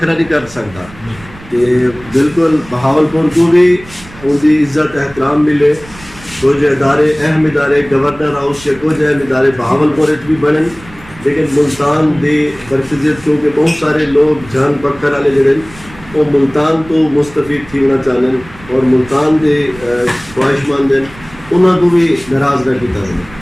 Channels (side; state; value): right; noise; rumble, 20 dB below the sound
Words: نہیں کر سکتا. کہ بالکل بہاولپور کو بھی ان کی عزت احترام ملے. کچھ ادارے اہم ادارے گورنر ہاؤس کے کچھ اہم ادارے بہاولپور بھی بنن, لیکن ملتان دی مرکزیت کیونکہ بہت سارے لوگ جان پکڑ والے جڑے وہ ملتان تو مستفید تھی ہونا چاہن اور ملتان دے خواہش مند ہیں انہوں کو بھی ناراض نہ کیتا ہے.